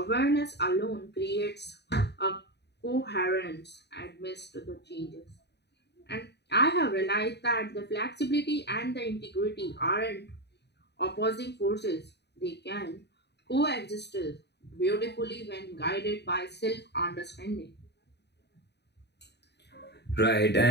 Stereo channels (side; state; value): right; late; 0.49 ms